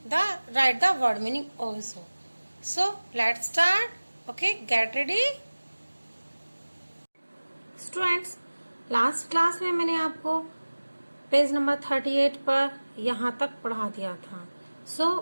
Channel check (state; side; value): inverted; both; correlation -1.00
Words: write the word meaning also. So let's start. Okay, get ready. Students, last class में मैंने आपको page number 38 पर यहाँ तक पढ़ा दिया था. So